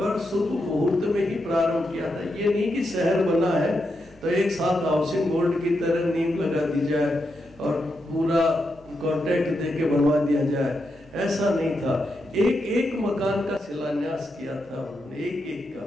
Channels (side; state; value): both; normal; correlation 0.84